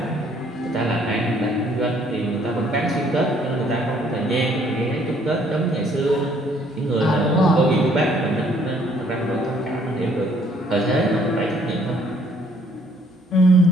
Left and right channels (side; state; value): both; normal; correlation 0.63